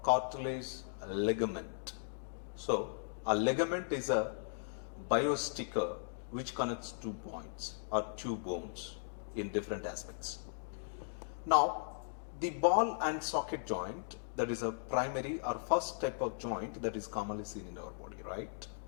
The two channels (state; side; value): silent; right; digital silence